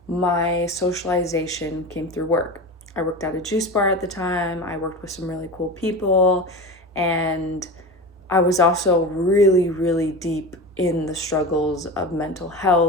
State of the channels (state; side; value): normal; both; correlation 0.28